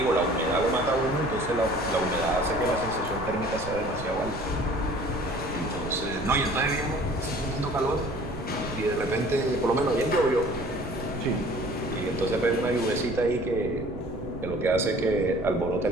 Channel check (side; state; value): right; noise; rumble, 12 dB below the sound